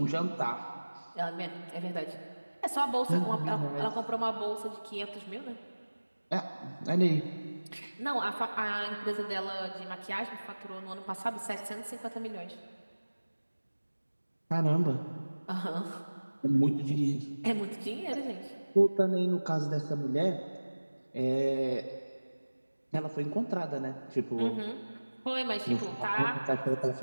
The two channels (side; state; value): both; inverted; correlation -1.00